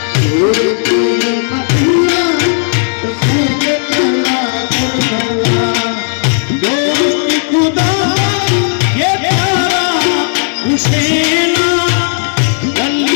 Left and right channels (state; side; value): silent; right; digital silence